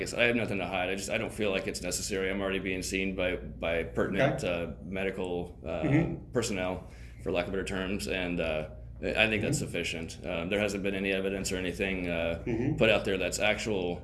I said, I have nothing to hide. I don't feel like it's necessary. I'm already being seen by pertinent medical personnel, for lack of better terms, and I think that's sufficient. There hasn't been any evidence or anything put out there that's actual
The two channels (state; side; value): identical; both; correlation 1.00